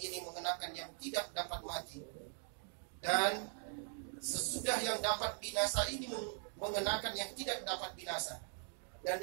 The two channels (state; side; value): silent; left; 50 dB below the other